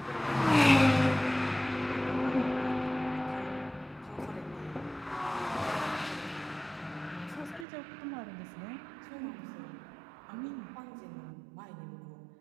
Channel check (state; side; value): drops out; left; at 7.7 s